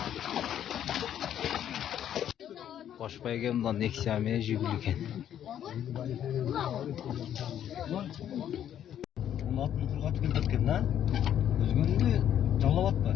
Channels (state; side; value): quieter; right; 10.3 dB